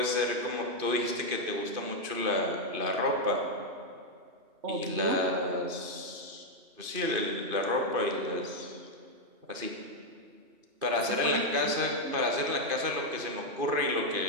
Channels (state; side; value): late; left; 2.5 ms